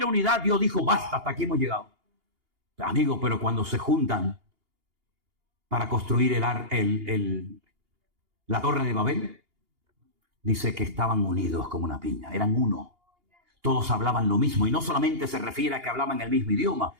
unidad, Dios dijo, basta, hasta aquí hemos llegado. Amigo, pero cuando se juntan para construir la torre de Babel, dice que estaban unidos como una piña, eran uno. Todos hablaban lo mismo, y no solamente se refiere a que hablaban el mismo idioma,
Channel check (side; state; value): left; late; 2.8 ms